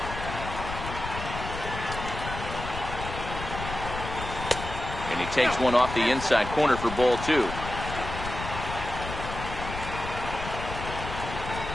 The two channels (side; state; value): left; noise; rumble, 7 dB below the sound